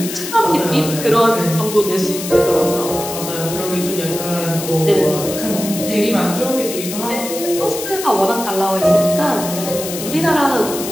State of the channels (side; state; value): left; noise; hiss, 8 dB below the sound